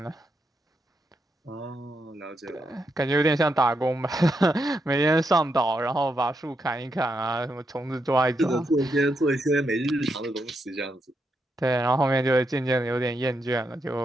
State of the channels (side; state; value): both; normal; correlation 0.82